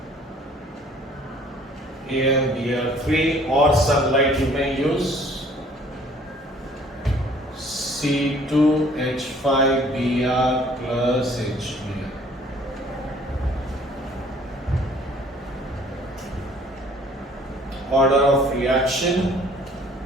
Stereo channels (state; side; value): normal; both; correlation 0.56